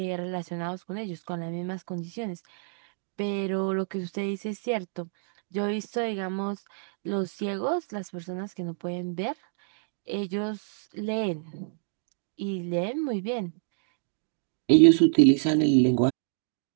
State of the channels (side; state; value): left; silent; digital silence